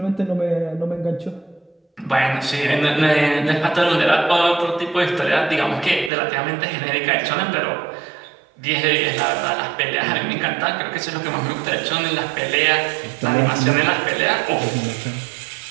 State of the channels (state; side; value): drops out; left; at 6.1 s